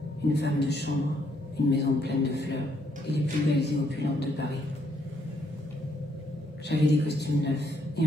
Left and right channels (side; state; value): both; normal; correlation 0.72